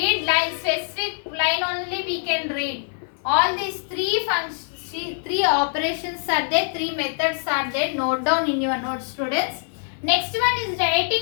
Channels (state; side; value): silent; right; 63 dB below the other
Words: line, specific line only we can read. All these 3 operations are there, 3 methods are there. Note down in your notes, students. Next one is